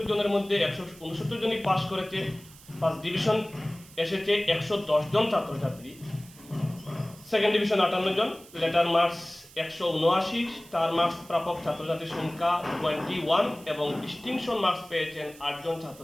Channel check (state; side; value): noise; right; hiss, 22 dB below the sound